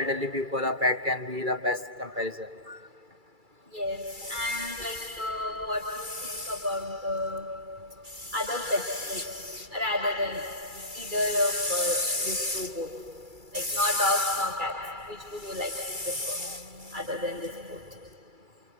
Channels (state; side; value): late; left; 2.3 ms